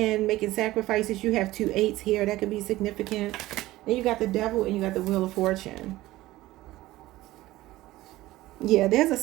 making sacrifices. You have 2 8s here. That could be significant. Then you got the Devil and you got the Wheel of Fortune. Yeah, there's a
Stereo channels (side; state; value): left; quieter; 17.1 dB